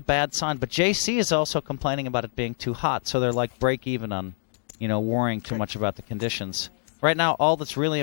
sign. But JC is also complaining about it being too hot, so they're like break even on, worrying too much about the conditions. Right now, all that's really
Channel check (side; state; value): right; silent; digital silence